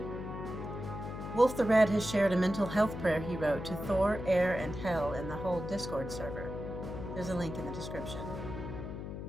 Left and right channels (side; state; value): left; noise; hum, 7 dB below the sound